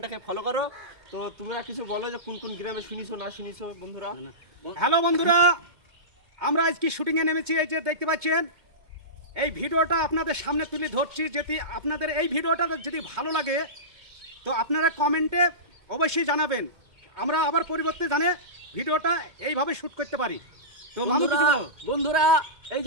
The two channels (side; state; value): left; late; 2.2 ms